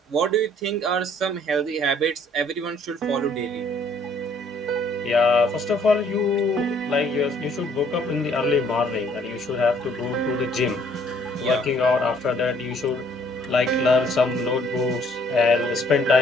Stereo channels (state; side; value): normal; both; correlation 0.62